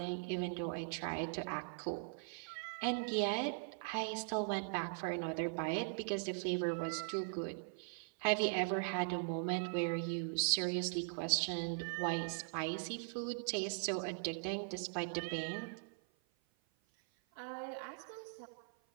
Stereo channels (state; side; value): silent; left; 51 dB below the other